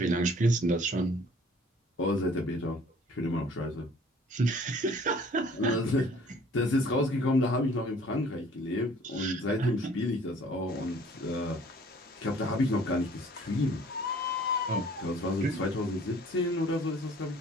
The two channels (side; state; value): both; normal; correlation 0.54